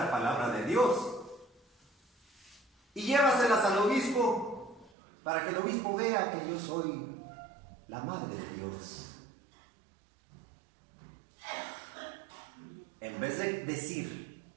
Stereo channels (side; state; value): left; drops out; at 4.9 s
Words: palabra de Dios. Y llévaselas al obispo, para que el obispo vea que yo soy la madre de Dios. En vez de decir,